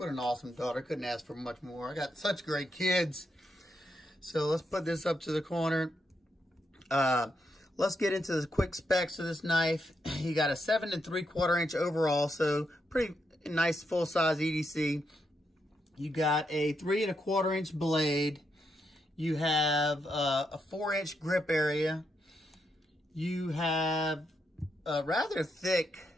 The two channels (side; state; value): both; normal; correlation 0.81